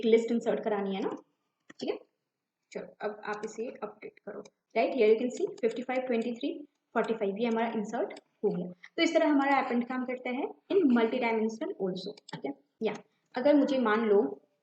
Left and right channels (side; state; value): both; identical; correlation 1.00